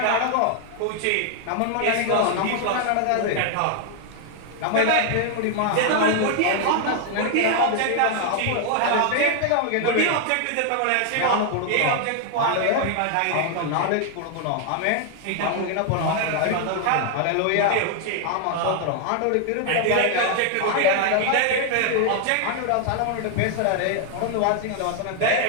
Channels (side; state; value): both; different; correlation 0.00